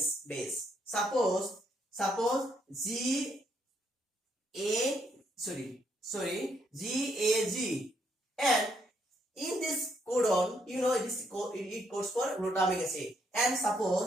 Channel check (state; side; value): normal; both; correlation 0.73